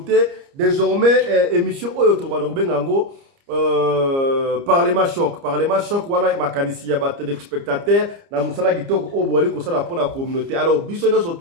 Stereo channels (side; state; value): left; late; 29 ms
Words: désormais émission Oyotobango Parlement choc, voilà makanisi ya ba téléspectateurs na musala kitoko obwali ko sala pour la communauté. Alors bisono